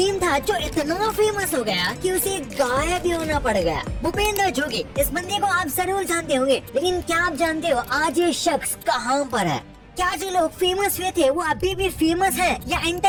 था जो इतना फेमस हो गया कि उसे गायब ही होना पड़ गया? भूपेंद्र जोगी, इस बंदे को आप जरूर जानते होंगे, लेकिन क्या आप जानते हो आज ये शख्स कहाँ पर है? क्या जो लोग फेमस हुए थे वो अभी भी फेमस हैं या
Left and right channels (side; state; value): both; identical; correlation 1.00